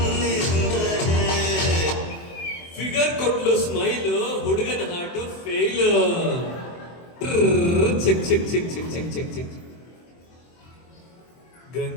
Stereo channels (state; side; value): late; right; 24 ms